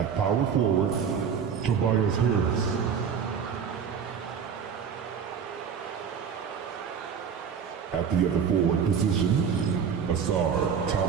power forward, Tobias Harris. At the other forward position, Asar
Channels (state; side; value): quieter; left; 7.1 dB